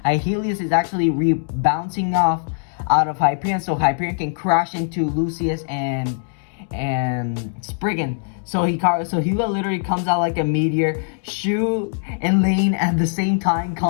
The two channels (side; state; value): right; silent; 65 dB below the other